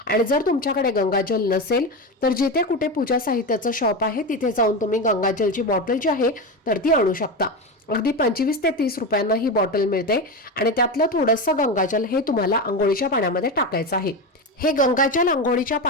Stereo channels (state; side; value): normal; both; correlation 0.18